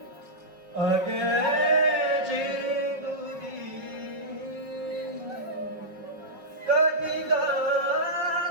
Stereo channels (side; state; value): left; late; 5.1 ms